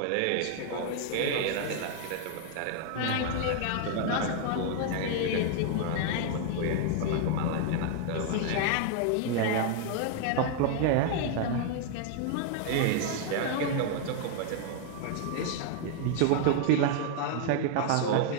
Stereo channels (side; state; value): both; different; correlation 0.00